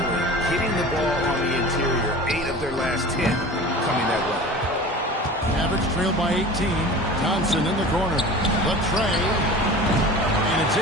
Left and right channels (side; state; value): both; normal; correlation 0.38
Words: Hitting the ball on the interior. 8 of their last 10 coming that way. Mavericks trailed by 18. Thompson in the corner. Latrey. And it's